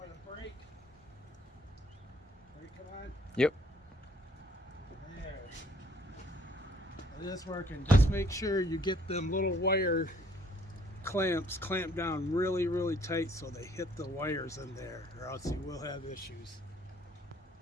a brake. Brake, come on. Yep. There. It is working. Just make sure you get them little wire clamps clamped down really, really tight so they hit the wires in there, or else you will have issues.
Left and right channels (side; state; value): both; normal; correlation 0.62